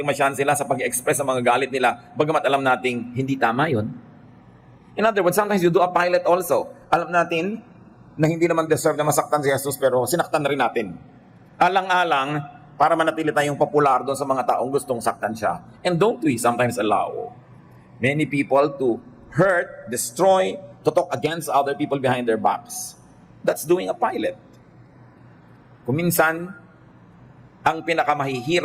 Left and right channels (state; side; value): identical; both; correlation 1.00